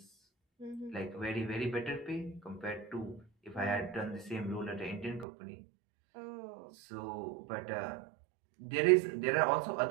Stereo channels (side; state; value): left; drops out; at 5.2 s